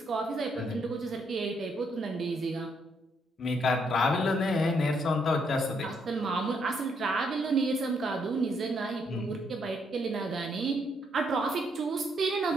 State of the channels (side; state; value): both; normal; correlation 0.74